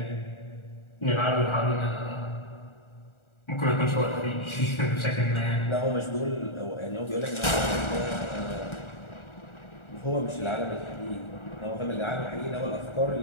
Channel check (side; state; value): right; late; 1.4 ms